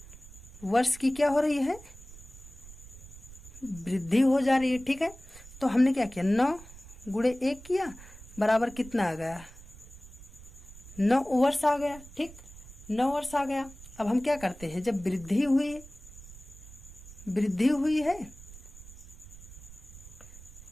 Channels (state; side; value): noise; right; rumble, 17 dB below the sound